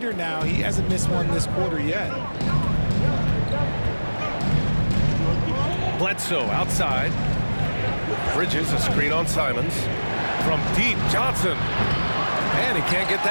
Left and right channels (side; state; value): both; inverted; correlation -1.00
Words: now. He hasn't missed one this quarter yet. Bledsoe outside. Bridges, a screen on Simons. From deep, Johnson. And he can't get